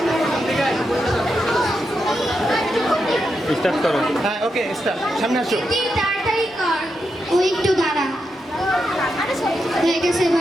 স্টার্ট করো। হ্যাঁ ওকে স্টার্ট, সামনে আসো। তাড়াতাড়ি কর, ও একটু দাঁড়া। হয়ে গেছে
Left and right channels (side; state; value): both; normal; correlation 0.85